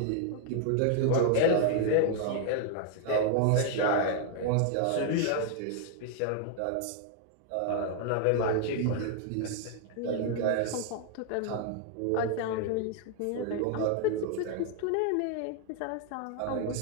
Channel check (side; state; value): both; different; correlation 0.00